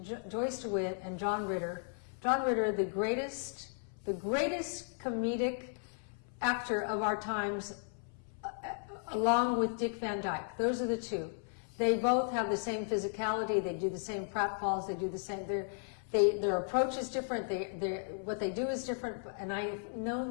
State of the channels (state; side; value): silent; right; 54 dB below the other